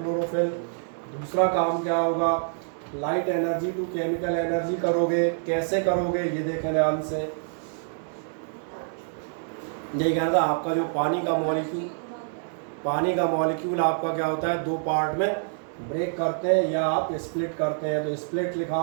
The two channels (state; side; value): silent; left; 60 dB below the other